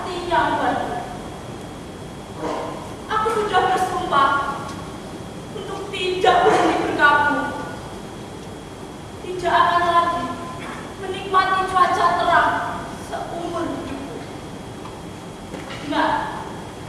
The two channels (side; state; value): both; identical; correlation 1.00